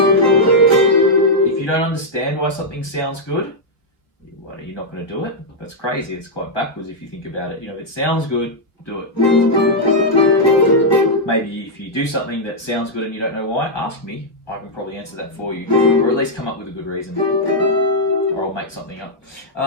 If you don't understand why something sounds good, what, are you not going to do it? That's crazy. It's quite backwards if you think about it. You know, if it sounds good, do it. maybe if you do something that sounds good and you don't know why, ask me. I can probably answer that for you, or at least come up with a good reason, or I'll make something up.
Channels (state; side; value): late; right; 1.4 ms